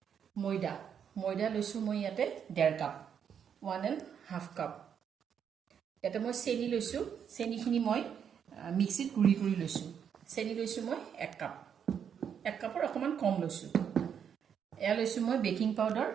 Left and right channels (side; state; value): left; quieter; 7.9 dB